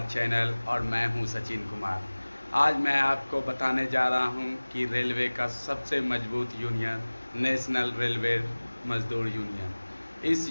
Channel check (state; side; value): inverted; both; correlation -1.00